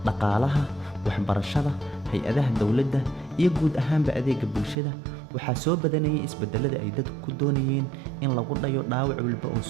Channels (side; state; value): left; drops out; at 4.8 s